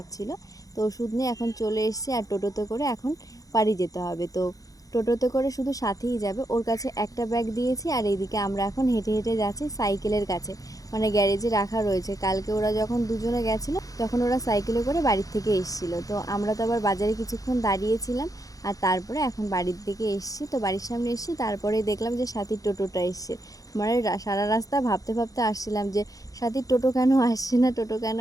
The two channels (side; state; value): right; late; 0.17 ms